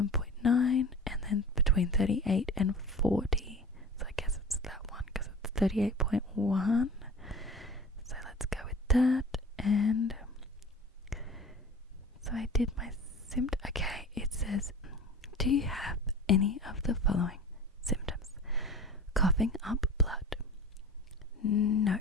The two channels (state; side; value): normal; both; correlation 0.38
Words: and then between 38 and 40. So I guess it's that one because it's 38.1. So let's go with that. And so I did my symptom. Okay, it says, do you have any of the following symptoms? Coughing up blood. No.